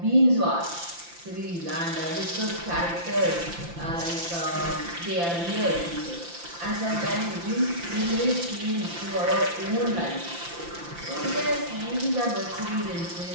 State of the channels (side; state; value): left; late; 5.8 ms